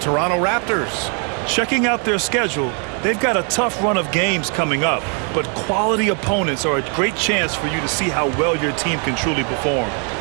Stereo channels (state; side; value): quieter; left; 38.4 dB